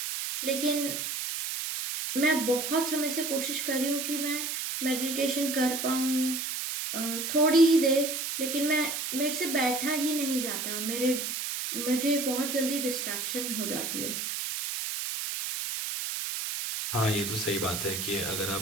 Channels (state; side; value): noise; right; hiss, 3 dB below the sound